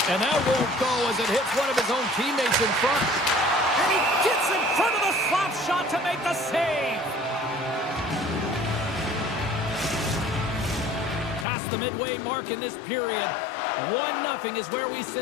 And that won't go as it hits one of his own teammates in front. And he gets in front of the slap shot to make the save. Past the midway mark in this period. 1-0 is where we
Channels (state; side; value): drops out; right; at 11.5 s